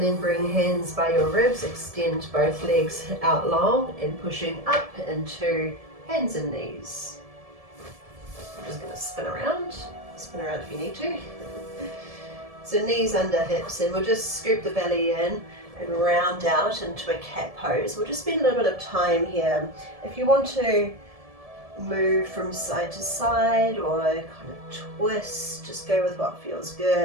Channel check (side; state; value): left; late; 1.7 ms